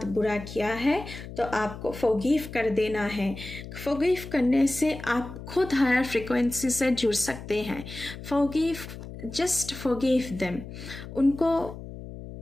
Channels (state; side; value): noise; left; hum, 12 dB below the sound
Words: बुरा किया है तो आपको फॉरगिव कर देना है। फॉरगिव करने से आप खुद हायर फ्रिक्वेंसी से जुड़ सकते हैं। Forgive, just forgive them. उनको